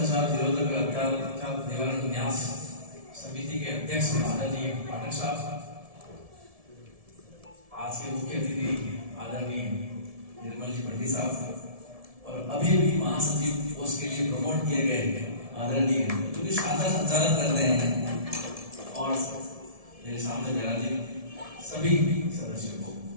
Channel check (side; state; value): left; late; 1.7 ms